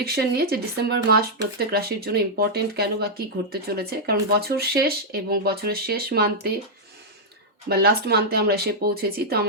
নিয়ে, যে ডিসেম্বর মাস প্রত্যেক রাশির জন্য ইম্পর্টেন্ট কেন বা কী ঘটতে চলেছে। কারণ বছর শেষ এবং বছরের শেষ মান্থে বা লাস্ট মান্থে আমরা এসে পৌঁছেছি, তো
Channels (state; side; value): normal; both; correlation -0.06